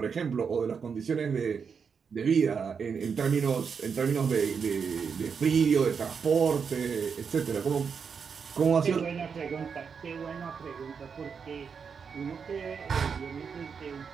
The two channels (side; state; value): left; quieter; 6.2 dB